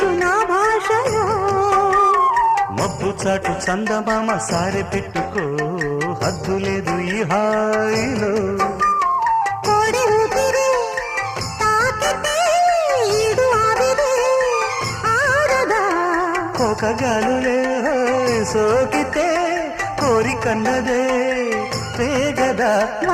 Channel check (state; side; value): identical; both; correlation 1.00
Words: నా భాషలో మబ్బు చాటు చందమామ సారె పెట్టుకో హద్దు లేదు ఈ హాయిలో కోడి ఊపిరి తాకితే ఈడు ఆవిరి ఆరదా కోకగాలులే సోకితే కోరికన్నదే పేగదా